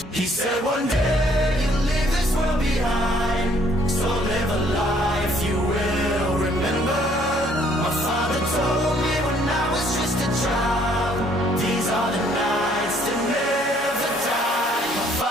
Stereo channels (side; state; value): both; normal; correlation 0.63